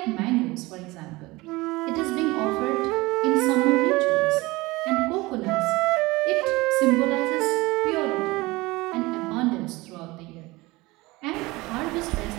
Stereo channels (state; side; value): quieter; left; 21.7 dB